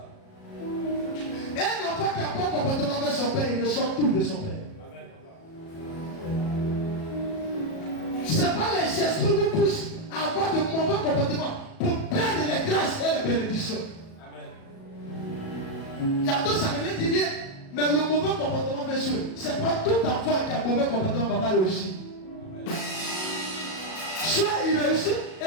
Un enfant qui a pas de comportement avec son père, il reçoit tout de son père. Amen, papa. Ce n'est pas les esprits qui vous poussent à avoir de mauvais comportements pour perdre les grâces et les bénédictions. Amen. Il y a deux, ça ne dit rien, mais le mauvais comportement fait jouer. Ce n'est pas tout enfant qui a un mauvais comportement va pas réussir. Soit il réussit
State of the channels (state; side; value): late; right; 37 ms